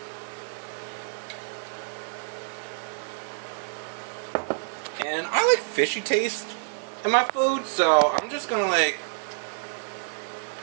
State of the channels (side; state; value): left; silent; 60 dB below the other